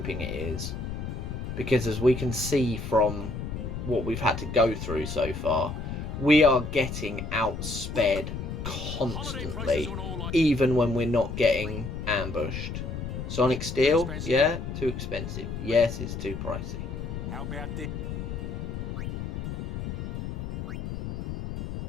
it is. Because as we can see from what we've had to go through so far, we are getting outsped constantly, even when we're not getting ambushed. Sonic Steel, yeah, too expensive. Yes, it's too pricey. How about this?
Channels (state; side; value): noise; left; rumble, 6 dB below the sound